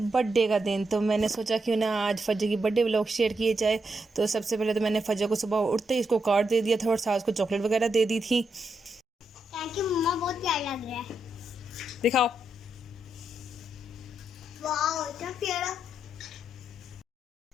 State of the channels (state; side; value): normal; both; correlation 0.82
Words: बर्थडे का दिन, तो मैंने सोचा क्यों ना आज फजर की बर्थडे व्लॉग शेयर किए जाए। तो सबसे पहले तो मैंने फजर को सुबह उठते ही इसको कार्ड दे दिया था और साथ को चॉकलेट वगैरह दे दी थी। थैंक यू मम्मा, बहुत प्यारा लग रहा है। दिखाओ। वाह इतना प्यारा।